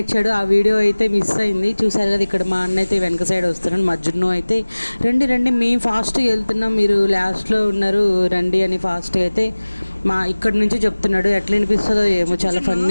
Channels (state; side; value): inverted; both; correlation -1.00